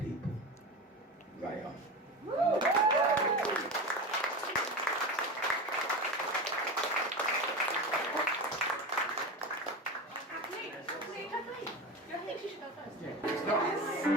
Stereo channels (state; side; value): normal; both; correlation 0.25